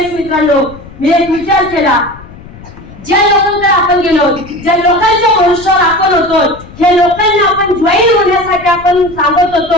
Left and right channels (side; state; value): left; noise; rumble, 18 dB below the sound